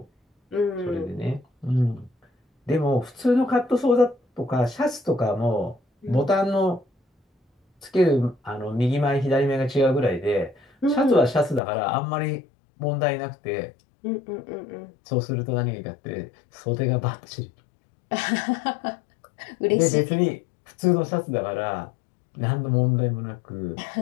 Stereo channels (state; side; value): drops out; right; at 11.6 s